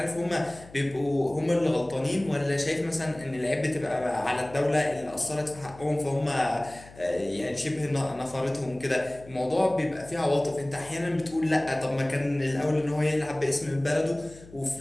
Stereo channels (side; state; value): left; noise; hum, 20 dB below the sound